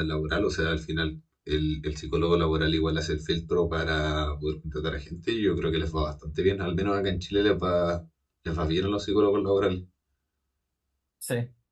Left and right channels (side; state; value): both; identical; correlation 1.00